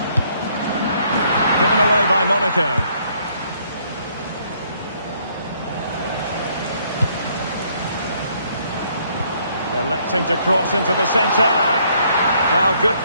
Given away by Monaco. Electing to cross into the centre. Well, good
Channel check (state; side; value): inverted; both; correlation -0.67